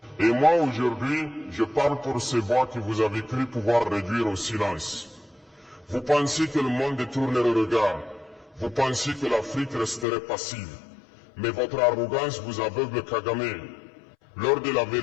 Et moi, aujourd'hui, je parle pour ces voix que vous avez cru pouvoir réduire au silence. Vous pensiez que le monde détournerait le regard. Vous pensiez que l'Afrique resterait passive. Mais votre arrogance vous aveugle, Kagame. L'heure de la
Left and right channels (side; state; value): right; drops out; at 10.1 s